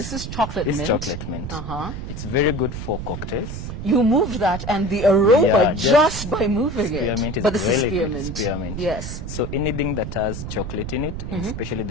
is chocolate mint. This is chocolate mint. It's very good for cocktails. You moved that and the aroma just by moving spearmint it. Is but this really is spearmint. Good. Spearmint. Yes. So anything that has chocolate in it, especially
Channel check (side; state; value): right; noise; rumble, 7 dB below the sound